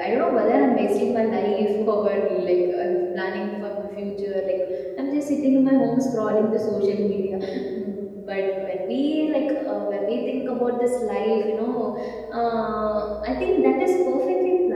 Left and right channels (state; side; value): identical; both; correlation 1.00